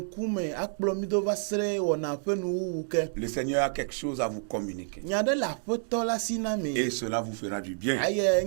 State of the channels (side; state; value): left; silent; digital silence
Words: akplo mi do va sere wona pe nu wuke. Le Seigneur a quelque chose à vous communiquer. Nyade la foto la sinami. Et cela vous fera du bien. Aye